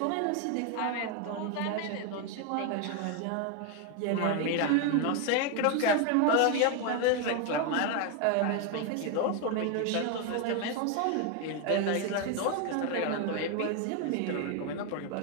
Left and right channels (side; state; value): both; different; correlation 0.01